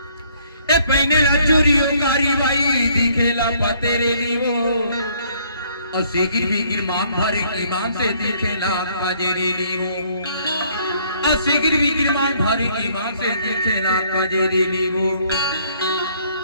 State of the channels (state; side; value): inverted; both; correlation -0.64